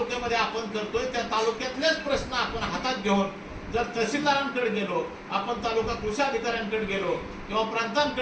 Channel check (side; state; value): both; identical; correlation 1.00